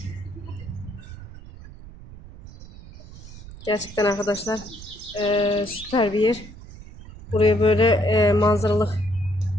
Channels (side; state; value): right; noise; rumble, 16 dB below the sound